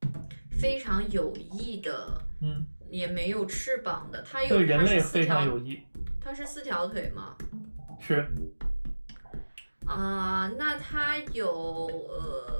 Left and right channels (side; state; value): both; inverted; correlation -1.00